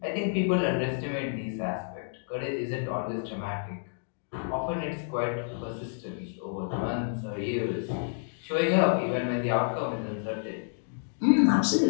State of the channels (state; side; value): silent; right; digital silence